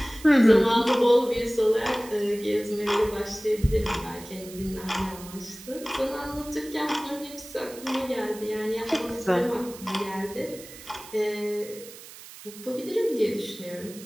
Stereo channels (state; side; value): noise; right; hiss, 16 dB below the sound